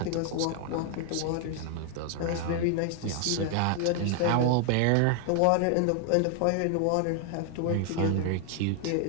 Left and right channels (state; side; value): different; both; correlation 0.00